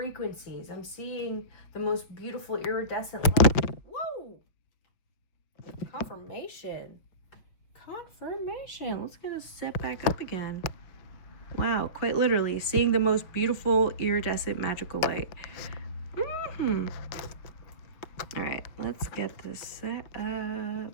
I'm seeing the most beautiful iridescent light. Whoa! Confirmation. Let's get us set back up again. Wow, quite literally seeing the most beautiful iridescent magical light. All right, let's get this set up.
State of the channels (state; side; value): late; right; 5.8 ms